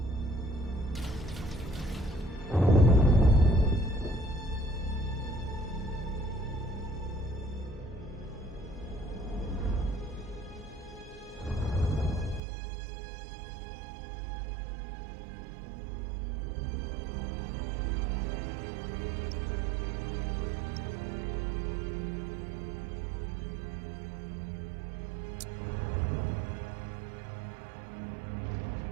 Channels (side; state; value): left; drops out; at 12.4 s